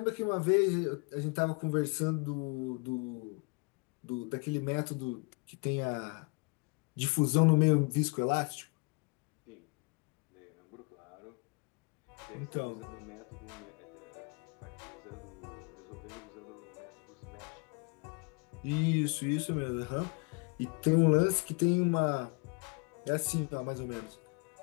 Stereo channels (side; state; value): right; quieter; 31.9 dB